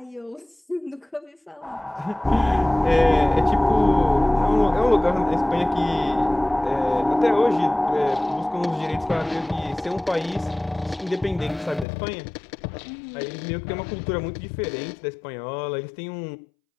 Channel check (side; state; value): right; drops out; at 11.9 s